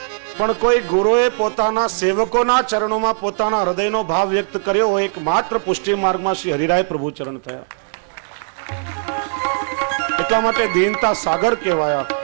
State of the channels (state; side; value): silent; left; digital silence